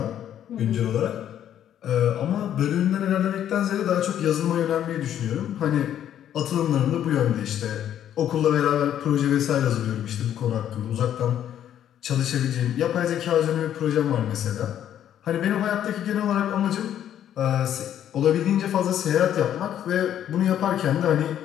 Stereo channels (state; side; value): quieter; right; 10.5 dB